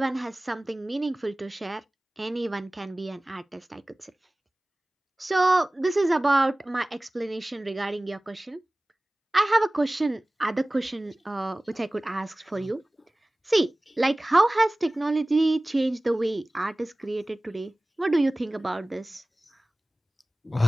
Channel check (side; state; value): both; normal; correlation 0.98